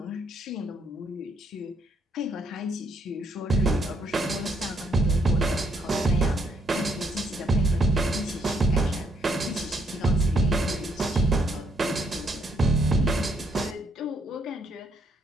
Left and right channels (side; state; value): both; normal; correlation 0.70